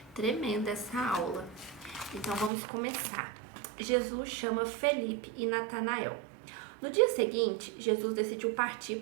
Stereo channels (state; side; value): drops out; left; at 2.5 s